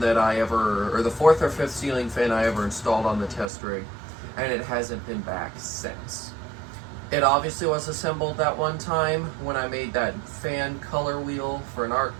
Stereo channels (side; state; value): left; drops out; at 3.5 s